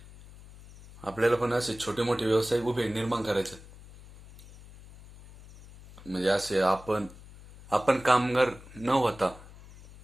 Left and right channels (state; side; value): noise; left; hum, 20 dB below the sound